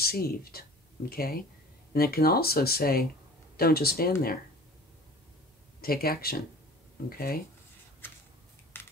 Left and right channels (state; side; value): normal; both; correlation 0.43